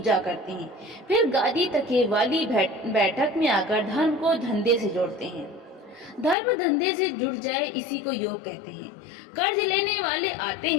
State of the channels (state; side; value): drops out; right; at 6.4 s